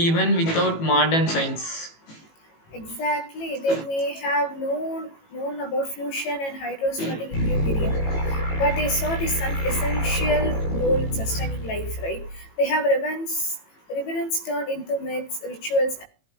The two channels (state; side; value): late; right; 18 ms